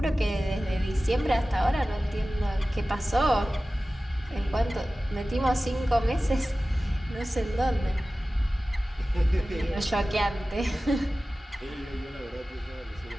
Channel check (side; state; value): both; normal; correlation 0.96